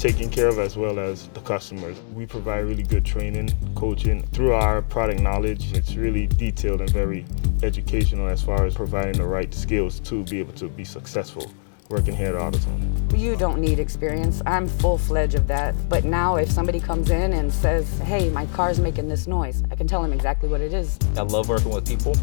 care of as well as the customers. We provide really good training, coaching. Through our product knowledge, it's really detailed and very educational as far as providing the right skills to be able to be successful working here at AutoZone. You don't need experience. I'm full-fledged of that. But now if somebody comes in and says, hey, my car's making this noise, I can tell them exactly what it is. I love working with people.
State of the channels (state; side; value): silent; right; 63 dB below the other